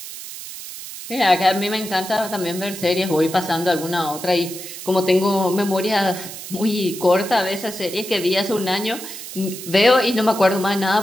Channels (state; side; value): noise; right; hiss, 11 dB below the sound